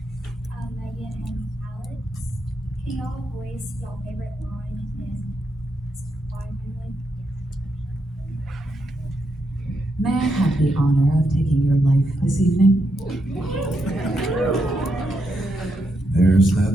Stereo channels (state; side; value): normal; both; correlation 0.81